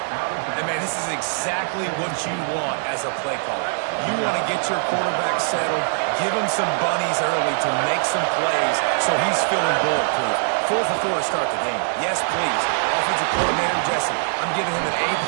And, man, this is exactly what you want as a play caller. You want to get your quarterback settled, give him some bunnies early to make some plays so he's feeling bulletproof. 4 for 4 to start the game. Yes, please. Offensive coordinator Jesse, I'm giving him an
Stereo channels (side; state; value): left; silent; digital silence